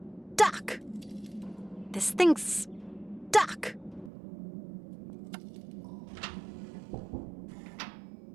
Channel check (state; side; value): drops out; left; at 4.1 s